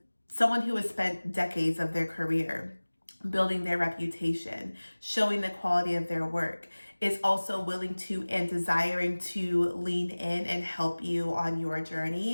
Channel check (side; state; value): both; inverted; correlation -1.00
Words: someone who has spent decades of their career building their reputation, showing the quality of their work, is also willing to and desiring to lean in and help you on your